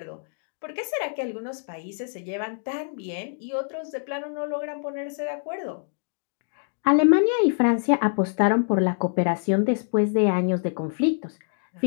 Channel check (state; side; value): silent; right; digital silence